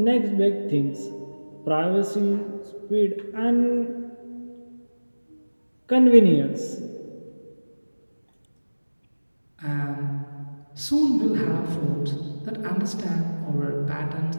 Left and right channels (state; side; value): inverted; both; correlation -1.00